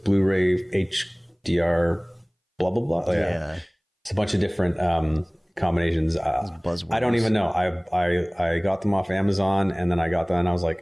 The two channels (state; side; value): identical; both; correlation 1.00